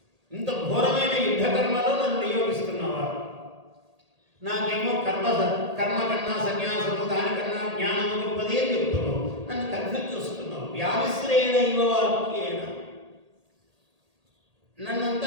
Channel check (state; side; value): late; left; 1.8 ms